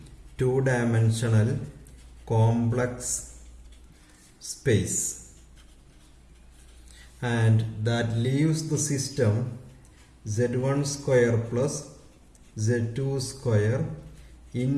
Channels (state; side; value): identical; both; correlation 1.00